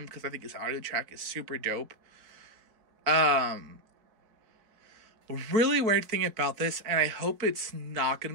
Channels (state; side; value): late; left; 4.5 ms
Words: because I think his audio track is super dope. Really weird thing about this, and I hope it's not going